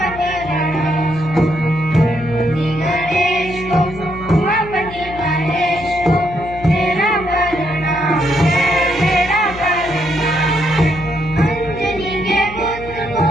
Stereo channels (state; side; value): noise; left; hum, 14 dB below the sound